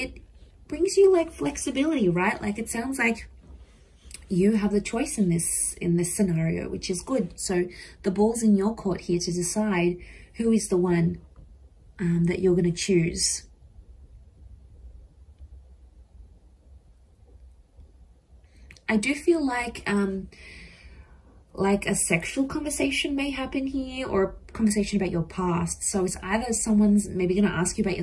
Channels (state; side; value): identical; both; correlation 1.00